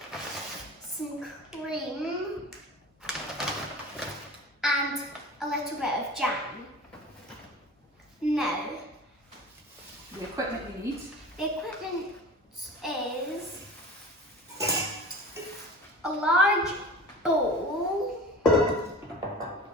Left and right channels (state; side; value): normal; both; correlation 0.37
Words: some cream and a little bit of jam. Now, The equipment you need. the equipment is a large bowl, a